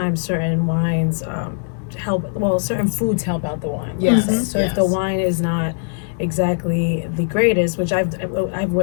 certain wines help. Well, certain foods help out the wine. Yes, So if the yes. wine is not exactly the greatest, which I've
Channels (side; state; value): right; silent; digital silence